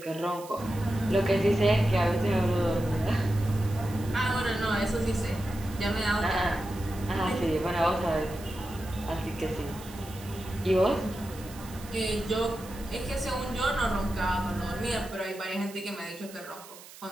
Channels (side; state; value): right; noise; hiss, 18 dB below the sound